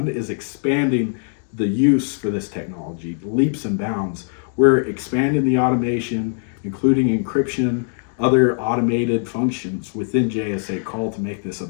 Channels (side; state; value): right; silent; 64 dB below the other